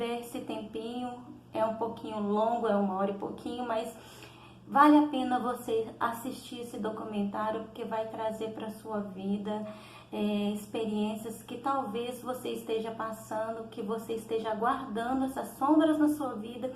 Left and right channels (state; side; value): identical; both; correlation 1.00